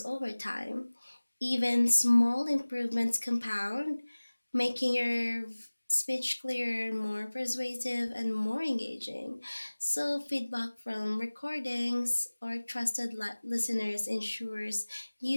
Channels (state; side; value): inverted; both; correlation -1.00